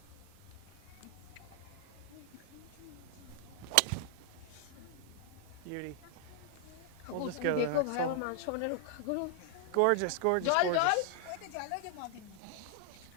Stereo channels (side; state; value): both; different; correlation 0.00